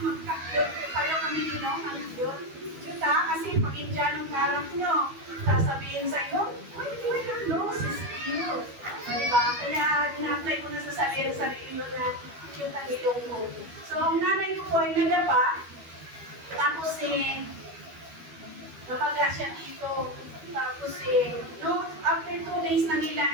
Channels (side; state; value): left; late; 12 ms